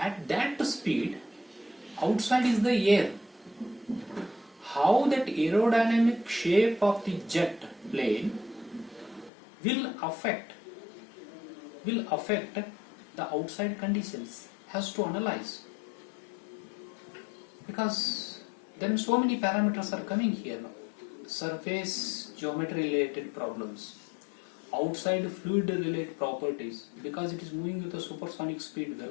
that speed, outside is the air. How that aerodynamic shape of the jet plane will affect the outside conditions, has to analyze, because then so many parameters are coming here now. Surface geometry related problems, outside fluid related properties, because it is moving with a supersonic speed,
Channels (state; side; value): drops out; right; at 9.3 s